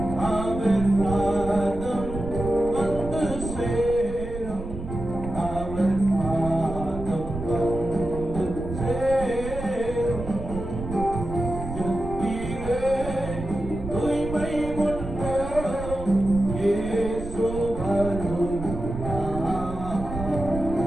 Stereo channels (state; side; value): noise; right; rumble, 10 dB below the sound